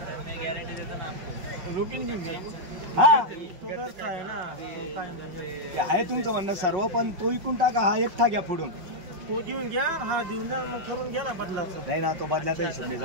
हा आहे तुमचं म्हणणं सर्व, पण तो इकून टाका. हा एकटा घ्या पुढून. तो घेऊन घ्या, हा देऊन द्या, मग करून घ्या ना बदला. नाही ना, तो बदल्याचा हिशोब नाही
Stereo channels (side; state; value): left; late; 5.4 ms